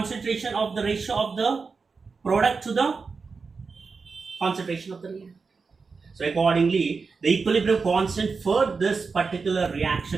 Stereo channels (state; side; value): quieter; left; 4.8 dB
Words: of the ratio of the product to the concentration of the reactant. So accordingly, the equilibrium constant for this particular